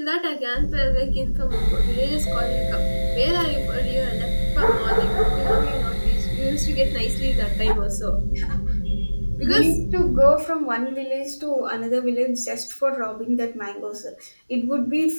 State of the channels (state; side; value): inverted; both; correlation -1.00